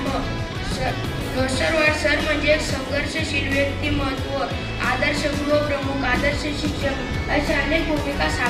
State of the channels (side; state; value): both; identical; correlation 1.00